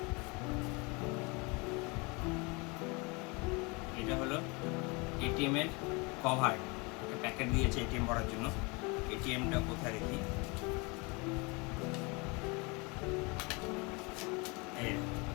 এটা হলো এটিএম এর কভার, একটা প্যাকেট দিয়েছে এটিএম ভরার জন্য। এটিএমটা কোথায় রেখি,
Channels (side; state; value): right; quieter; 28.4 dB